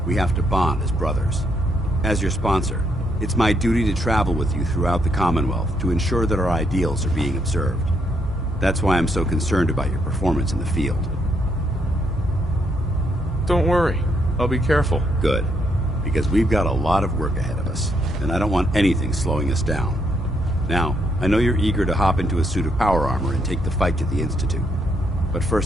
we have to bond as brothers. As your sponsor, it's my duty to travel with you throughout the Commonwealth to ensure that our ideals are being observed. That's why I'm so concerned about your performance in the field. Don't worry. I'll be careful. Good. Because we've got a lot of work ahead of us, and I don't want anything slowing us down. Now, I know you're eager to hop into a suit of power armor and take the fight to the Institute. But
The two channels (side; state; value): both; normal; correlation 0.75